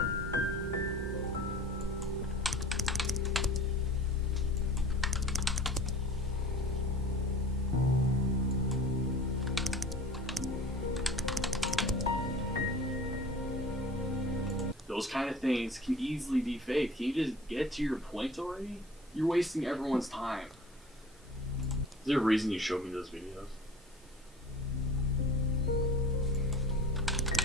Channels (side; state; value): both; normal; correlation 0.42